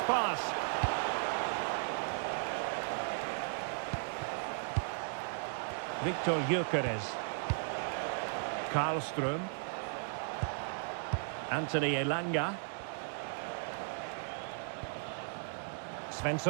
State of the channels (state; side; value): silent; left; digital silence